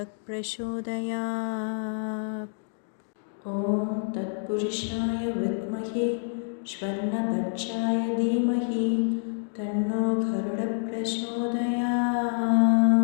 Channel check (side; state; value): right; silent; digital silence